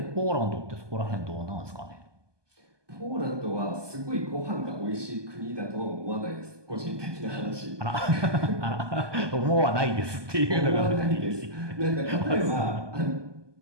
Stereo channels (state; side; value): late; left; 1.2 ms